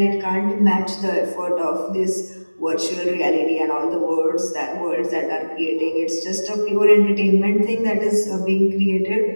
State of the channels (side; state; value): both; inverted; correlation -1.00